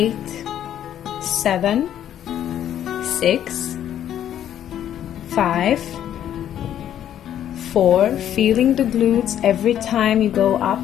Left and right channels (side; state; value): right; quieter; 10.6 dB